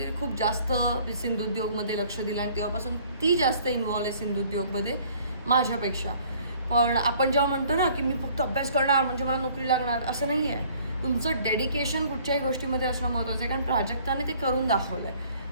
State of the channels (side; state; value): both; inverted; correlation -0.56